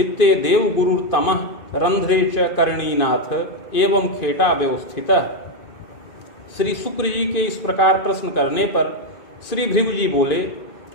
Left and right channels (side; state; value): right; late; 2.5 ms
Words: देव गुरुर्तमः रंध्रे च करणीनाथ एवं खेटा व्यवस्थितः। श्री शुक्र जी के इस प्रकार प्रश्न करने पर श्री भृगु जी बोले